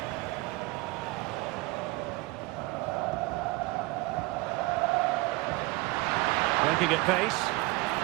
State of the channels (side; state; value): left; quieter; 22.1 dB